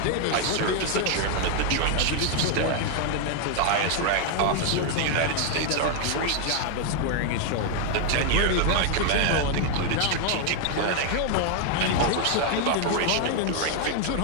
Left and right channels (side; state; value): both; different; correlation 0.00